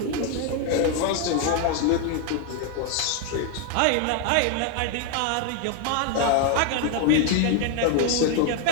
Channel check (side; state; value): both; different; correlation 0.00